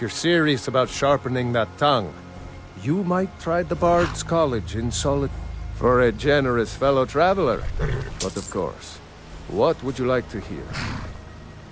serious about sharpening that tongue, you might try the Bard's College in solitude. For a generous fellow traveler. But of course, what would you like to hear?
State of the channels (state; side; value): identical; both; correlation 1.00